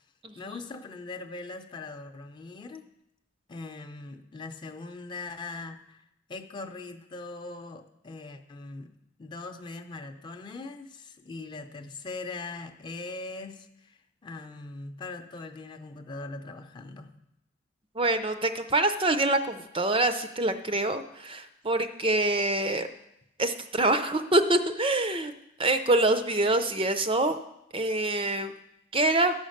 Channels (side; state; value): both; normal; correlation 0.15